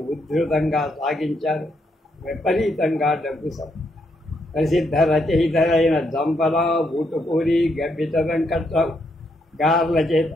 ఉధృతంగా సాగించారు. విపరీతంగా డబ్బు ప్రసిద్ధ రచయితలైన జంపల, ఊటుకూరి, గబ్బిత వెంకట్రావు గార్ల చేత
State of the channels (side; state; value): both; normal; correlation 0.77